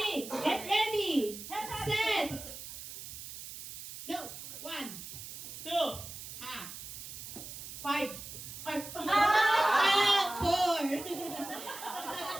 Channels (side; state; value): right; noise; hiss, 11 dB below the sound